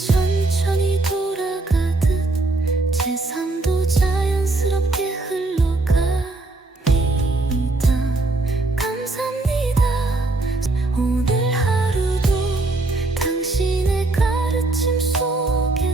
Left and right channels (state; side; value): quieter; left; 3.1 dB